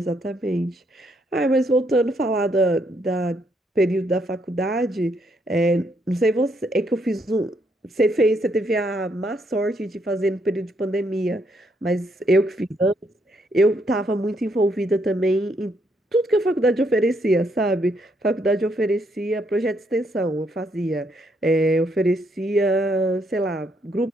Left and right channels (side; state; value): both; normal; correlation 0.74